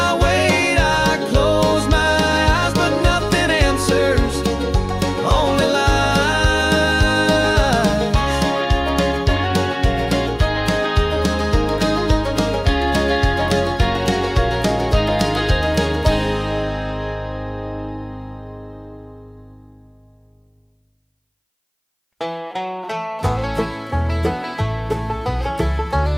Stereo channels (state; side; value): identical; both; correlation 1.00